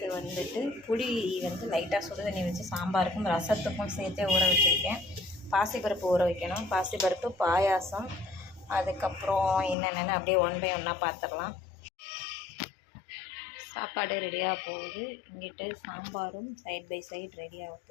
புளி லைட்டாக சுடு தண்ணி வச்சு சாம்பாருக்கும் ரசத்துக்கும் சேர்த்தே ஊற வச்சுருக்கேன். பாசிப்பருப்பு ஊற வைக்கணும். பாசிப்பருப்பு, பாயாசம், அதுக்கப்புறம் என்னென்னு அப்படியே ஒன் பை ஒன்னாக பார்த்துடலாம். சாப்பாடு ரெடியாக போகுது. இங்கிட்டு சாம்பாரும் சைட் பை சைட் ரெடியாக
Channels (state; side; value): drops out; right; at 9.8 s